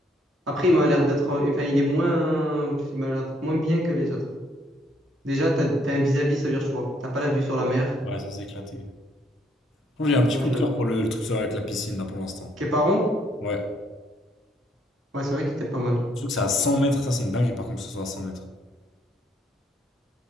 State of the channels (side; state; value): both; normal; correlation 0.70